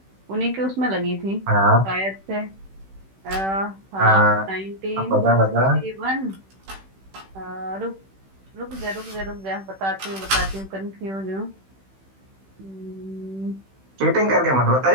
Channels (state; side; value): late; left; 16 ms